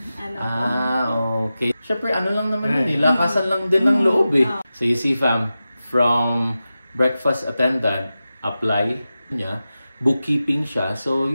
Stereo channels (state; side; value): inverted; both; correlation -0.93